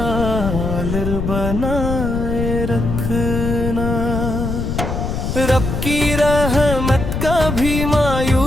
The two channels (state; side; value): noise; left; rumble, 2 dB below the sound